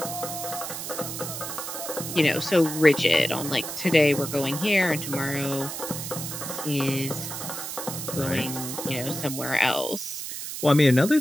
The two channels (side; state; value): right; noise; hiss, 6 dB below the sound